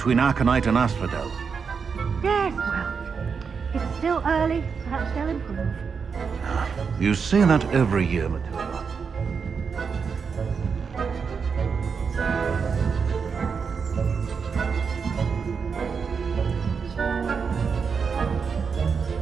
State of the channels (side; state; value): left; quieter; 5.8 dB